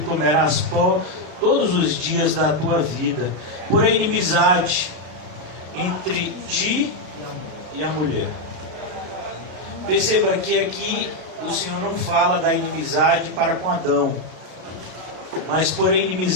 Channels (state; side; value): late; left; 32 ms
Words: pó todos os dias da tua vida. Porém, inimizade entre ti e a mulher. Perceba que aqui o Senhor não fala da inimizade para com Adão, mas porém